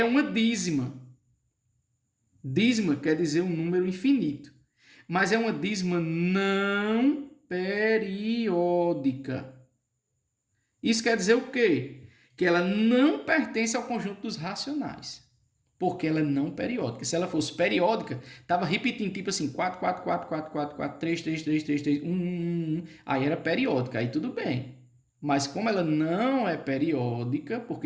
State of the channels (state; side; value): identical; both; correlation 1.00